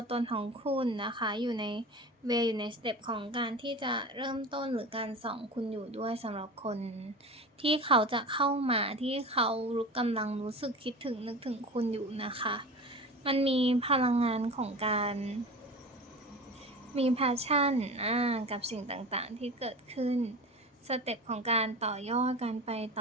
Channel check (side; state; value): both; normal; correlation 0.32